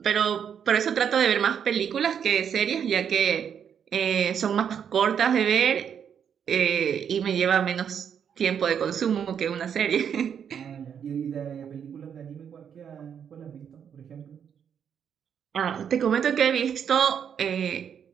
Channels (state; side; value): quieter; left; 8.0 dB